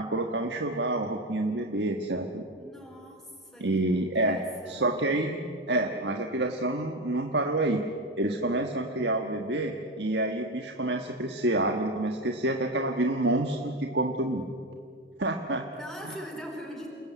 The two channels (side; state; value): both; normal; correlation 0.17